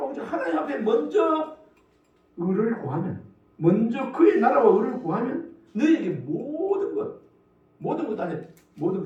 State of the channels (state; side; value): identical; both; correlation 1.00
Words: 하나님 앞에 먼저 의를 구하면, 먼저 그의 나라와 의를 구하면 너희에게 모든 것 안에 모든